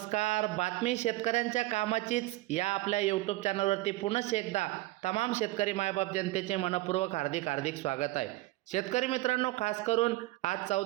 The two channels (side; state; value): left; quieter; 18.6 dB